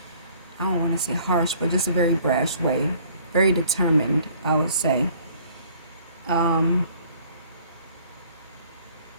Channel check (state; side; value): inverted; both; correlation -0.56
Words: I don't want to say harsh, but just a very brash way. Very determined, I would say.